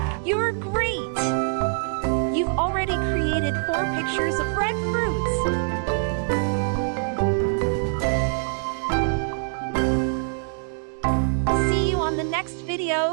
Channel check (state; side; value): silent; left; digital silence